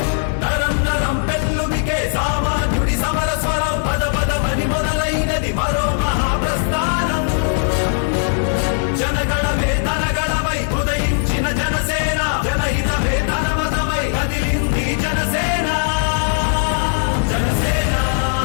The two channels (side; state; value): right; silent; digital silence